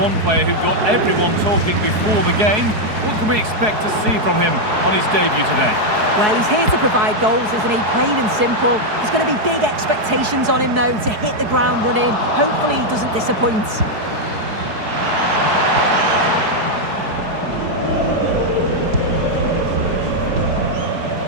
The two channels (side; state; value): left; late; 4.7 ms